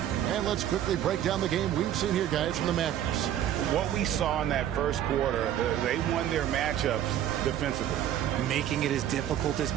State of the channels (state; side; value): quieter; left; 11.0 dB